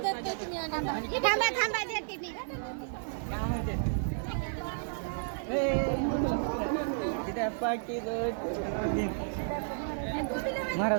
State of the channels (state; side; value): silent; left; 56 dB below the other